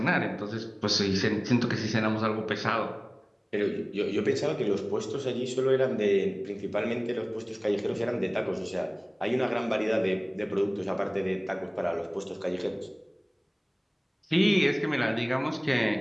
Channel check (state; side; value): identical; both; correlation 1.00